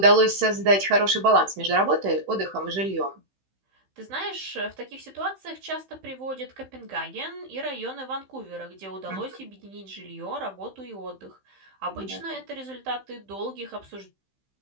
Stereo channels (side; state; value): left; late; 15 ms